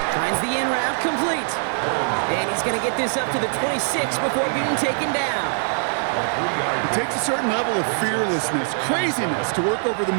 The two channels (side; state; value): left; silent; 64 dB below the other